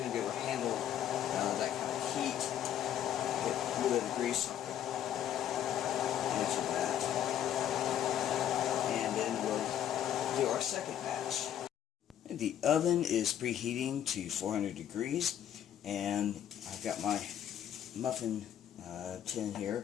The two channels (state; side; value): quieter; right; 10.4 dB